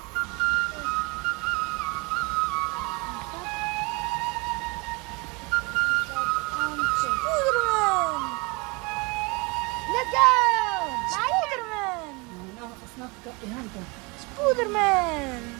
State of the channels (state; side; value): quieter; left; 28.1 dB